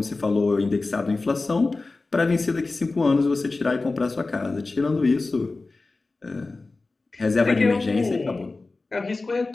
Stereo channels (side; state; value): right; quieter; 3.5 dB